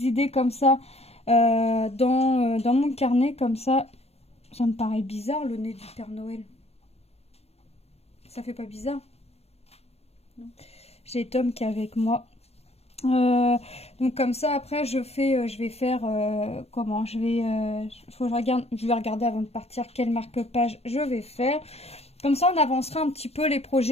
idées comme ça dans mon carnet, comme ça. Ça me paraît bizarre, le nez du Père Noël. Ça fait pas bizarre? Non. J'ai Tom qui est avec moi. Donc comme ça, après, je vais faire comment? Je vais regarder avant de partir quel marque-page je vais faire. Comme ça, on avancera un petit peu les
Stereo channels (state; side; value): late; right; 0.30 ms